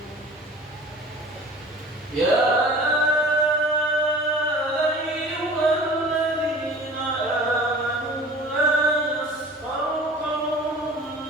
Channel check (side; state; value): both; normal; correlation 0.43